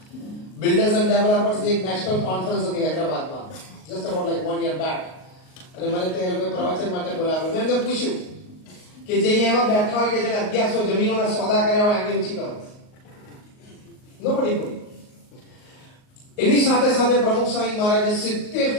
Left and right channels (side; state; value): right; late; 38 ms